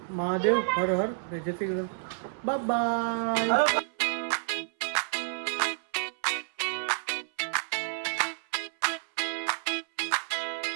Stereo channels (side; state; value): left; silent; 58 dB below the other